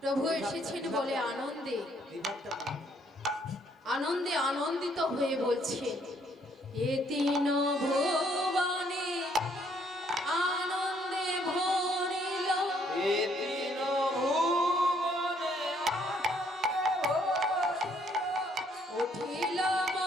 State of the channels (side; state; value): both; normal; correlation 0.67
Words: প্রভু এসেছেন বলে আনন্দে আনন্দে আনন্দিত হয়ে বলছেন, এ তিন ভুবনে আনন্দে ভরিল, এ তিন ভুবনে আনন্দে ভরিল, উঠিল